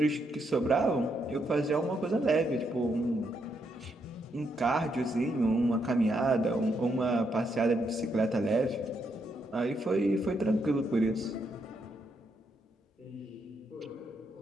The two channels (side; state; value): both; normal; correlation 0.78